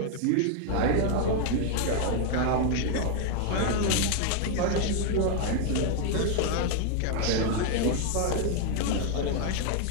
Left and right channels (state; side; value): different; both; correlation 0.00